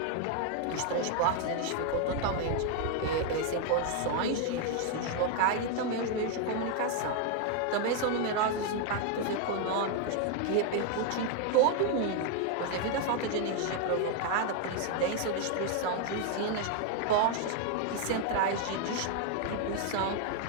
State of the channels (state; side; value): different; both; correlation 0.00